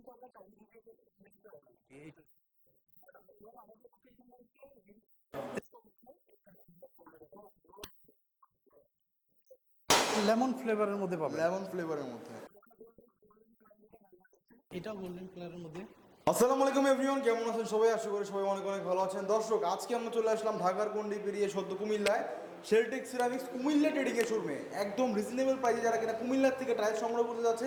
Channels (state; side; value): identical; both; correlation 1.00